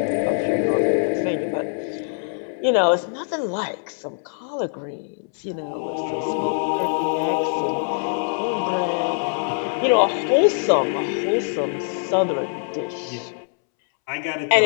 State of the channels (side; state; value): right; silent; 63 dB below the other